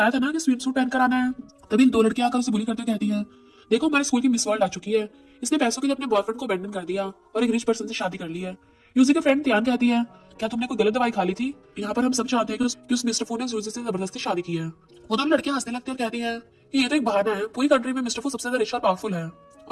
था ना कि स्विम सूट पहन कर आना है। तभी दो लड़कियां आकर उसे बुली करते कहती है देखो हमारे स्कूल की मिस वर्ल्ड आ चुकी है, इसने पैसों के लिए अपने बॉयफ्रेंड को अबैंडन कर दिया और एक रिच पर्सन से शादी कर ली है। यूजी के फ्रेंड त्यान कहती है क्या तुमने कोई गलत दवाई खा ली थी। यहाँ पर हम सब चाहते हैं कि उस मिस्टर फू ने यूजी से जबरदस्ती शादी की है। वो दोनों लड़कियां हंसने लगती है और कहती है कि ये तो एक बहाना है, पूरी कंट्री में मिस्टर फू सबसे ज्यादा रिच और पावरफुल है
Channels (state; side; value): identical; both; correlation 1.00